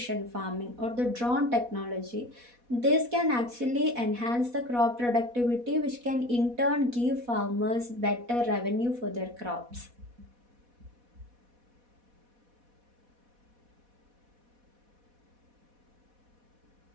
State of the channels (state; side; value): late; left; 4.1 ms